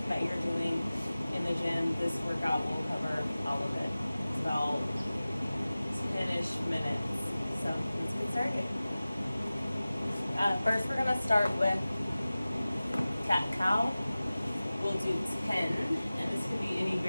that you're doing in the gym. This workout will cover all of it. It's about 10-ish minutes. So let's get started. First, we're gonna start with cat-cow. We'll do 10, and this could be any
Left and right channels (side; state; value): both; inverted; correlation -0.97